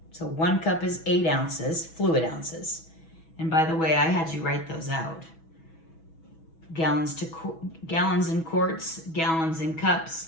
So 1 cup is 8 ounces, fluid ounces. And by the way, I had you write those out. Gallons and quarts, gallons and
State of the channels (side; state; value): right; late; 6.1 ms